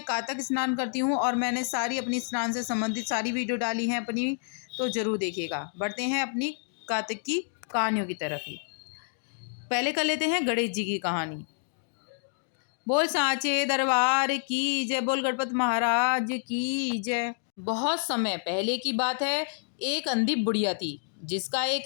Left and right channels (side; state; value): right; silent; digital silence